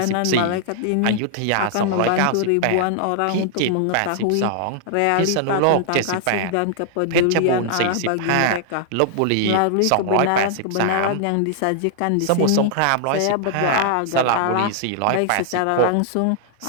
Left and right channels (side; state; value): both; different; correlation -0.01